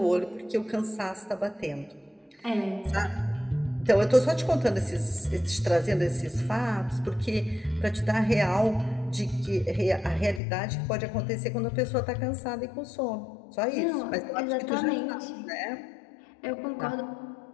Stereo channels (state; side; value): drops out; right; at 10.4 s